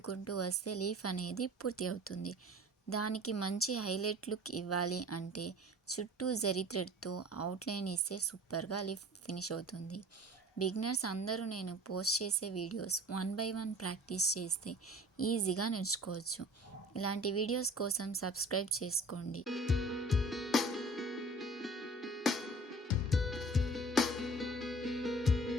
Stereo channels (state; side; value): normal; both; correlation 0.45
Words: వస్తే లీఫ్ అనేది పూర్తి అవుతుంది. దానికి మంచి హైలైట్ లుక్ ఇవ్వాలి అంటే చుట్టూ జరీ థ్రెడ్తో అవుట్లైన్ ఇస్తే సూపర్గా లీఫ్ ఫినిష్ అవుతుంది. బిగినర్స్ అందరూ నేను పోస్ట్ చేసే వీడియోస్ 1 by 1 ప్రాక్టీస్ చేస్తే ఈజీగా నేర్చుకోవచ్చు. ఇలాంటి వీడియోస్ కోసం సబ్స్క్రైబ్ చేసుకోండి.